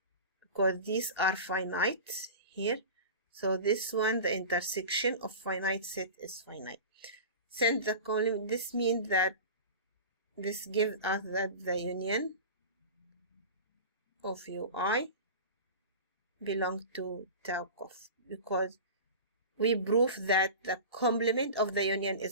Because these are finite here, so this one, the intersection of finite set is finite. Since the complement, this means that this gives us that the union of UI belongs to tau cof, because we prove that the complement of the union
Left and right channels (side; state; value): both; inverted; correlation -0.33